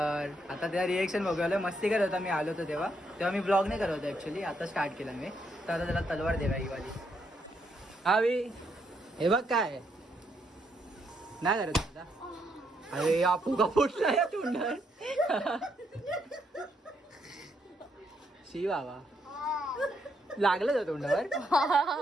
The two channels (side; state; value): both; normal; correlation 0.76